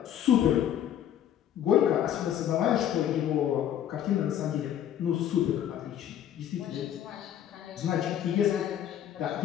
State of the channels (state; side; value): quieter; right; 10.5 dB